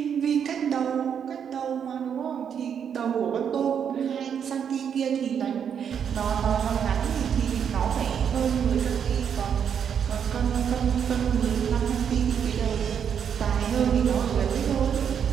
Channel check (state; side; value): quieter; left; 7.9 dB